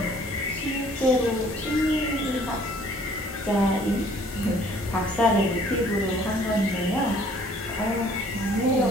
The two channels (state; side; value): normal; both; correlation 0.57